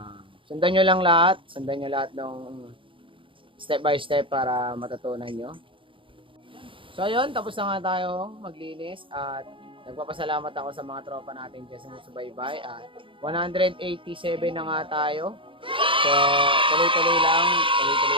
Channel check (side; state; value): left; late; 0.25 ms